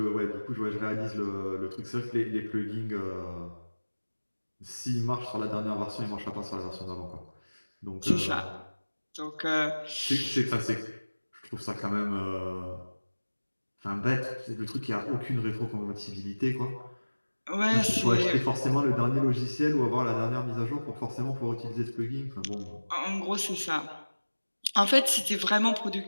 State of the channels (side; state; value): both; inverted; correlation -1.00